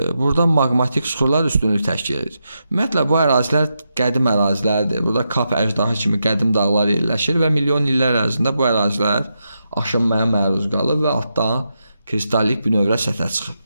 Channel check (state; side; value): inverted; both; correlation -0.86